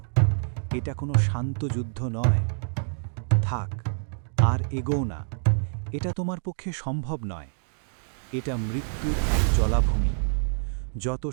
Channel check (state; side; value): silent; left; digital silence